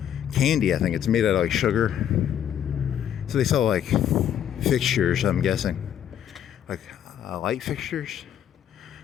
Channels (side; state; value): right; quieter; 9.9 dB